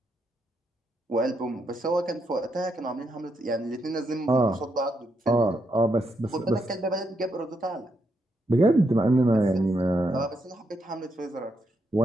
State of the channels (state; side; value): normal; both; correlation 0.80